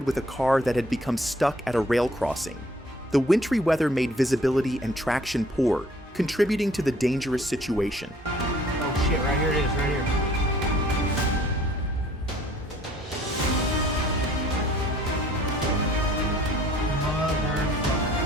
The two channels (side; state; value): both; normal; correlation 0.57